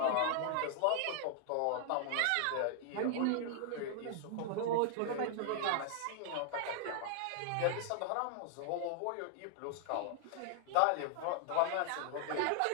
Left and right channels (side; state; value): both; different; correlation -0.01